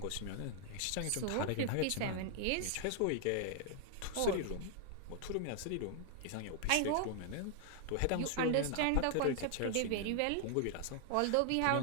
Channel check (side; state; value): both; different; correlation -0.01